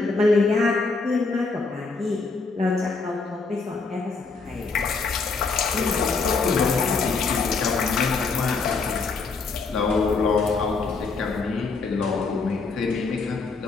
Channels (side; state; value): right; quieter; 4.2 dB